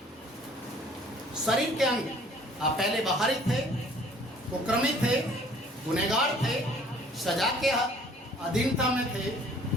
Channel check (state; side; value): normal; both; correlation 0.55